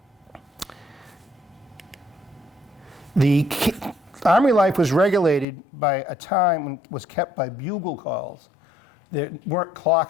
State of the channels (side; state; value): right; drops out; at 5.5 s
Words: The Army life was regulated by a time when it was kept by bugle calls. There weren't